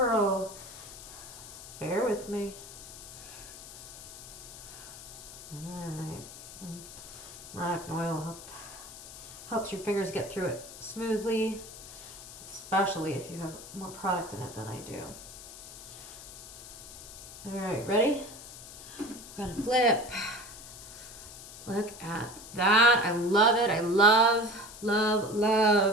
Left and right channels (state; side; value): noise; left; hiss, 14 dB below the sound